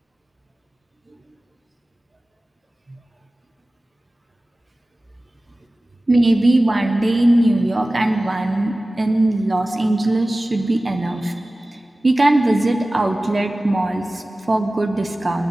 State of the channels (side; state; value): both; normal; correlation 0.97